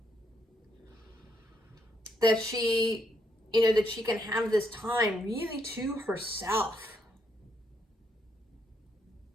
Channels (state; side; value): normal; both; correlation 0.76